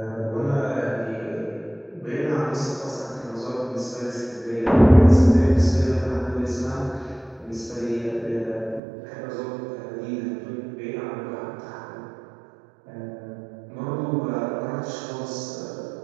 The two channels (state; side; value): drops out; left; at 8.8 s